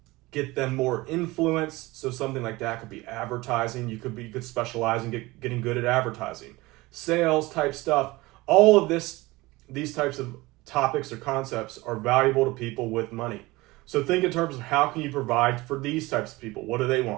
get them more influence. So something like that could be advertising. You could specialize in getting good at advertising, sales type stuff. All of these types of topics or concepts are valuable to people with money. So think in terms of how can you provide for these types of people? What do they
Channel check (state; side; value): quieter; left; 21.0 dB